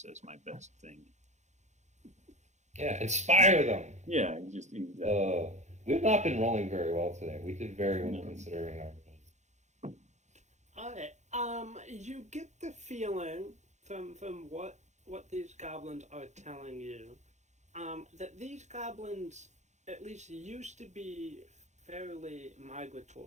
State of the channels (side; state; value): left; late; 0.34 ms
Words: as my best thing. Yeah, inspire them. Yeah, just exactly. We've not been rolling very well today. We did very well No. considering our. Alright. You get the feeling from what these goblins are telling you, that these goblins at least used to be fairly